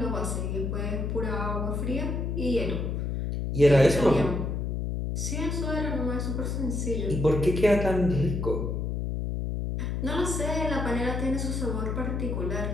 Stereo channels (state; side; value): noise; left; hum, 1 dB below the sound